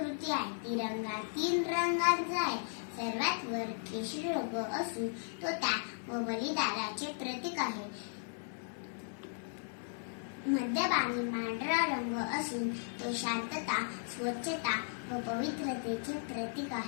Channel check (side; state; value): right; silent; 54 dB below the other